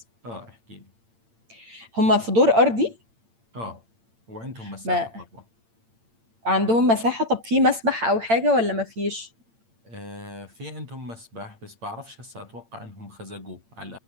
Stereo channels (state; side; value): late; left; 8.8 ms